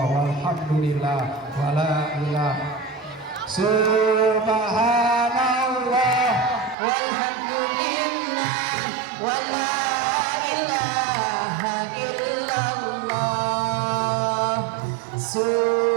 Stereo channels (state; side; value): drops out; left; at 6.8 s